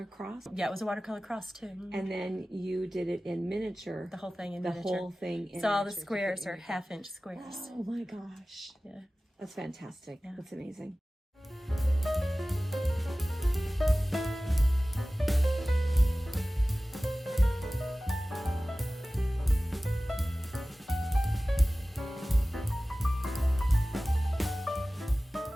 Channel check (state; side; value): normal; both; correlation 0.97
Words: cross? Yeah, it was a watercolor cross too. Mm-hmm. And then you did it in miniature. The whole thing in the miniature. Whole thing in so all the miniature. squares are 1/2-inch squares. Oh my gosh. Yeah. That's fantastic. Yeah. That's amazing.